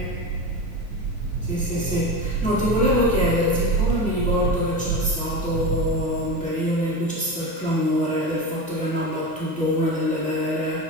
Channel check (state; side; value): normal; both; correlation 0.24